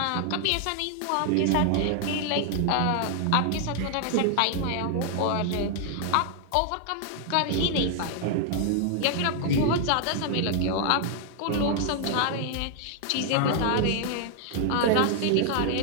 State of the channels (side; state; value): both; different; correlation 0.00